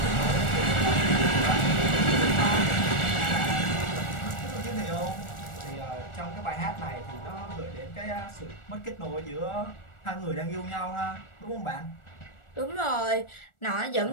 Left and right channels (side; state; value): right; late; 1.4 ms